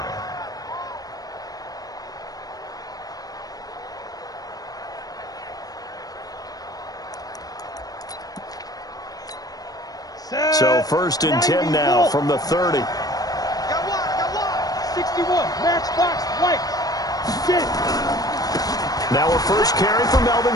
So 1st and 10 now from the 30. Got one. 61, matchbox, white. Sit. Now a first carry for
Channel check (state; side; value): late; right; 0.18 ms